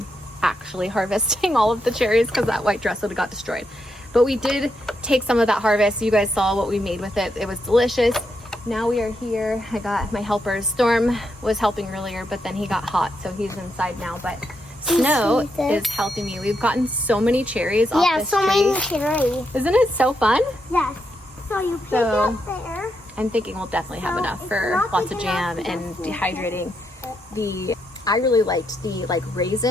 actually harvesting all of the cherries, because that white dress would have got destroyed. But we did take some of that harvest. You guys saw what we made with it. It was delicious. Now we are here. I got my helpers. Storm was helping earlier, but then he got hot, so he's inside now. But Snow is helping me. We've gotten so many cherries off this tree. Yeah, so many cherries. Isn't it so fun? Yes. So you pick up there. I'm thinking we'll definitely have enough for lots of jam and dehydrating. I really liked the like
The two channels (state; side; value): normal; both; correlation 0.81